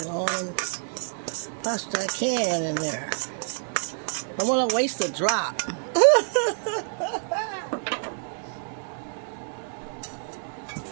all pasta I can in there. I want to waste a drop.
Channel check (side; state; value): left; silent; 60 dB below the other